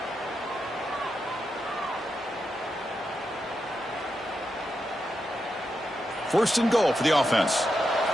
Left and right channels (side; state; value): both; normal; correlation 0.86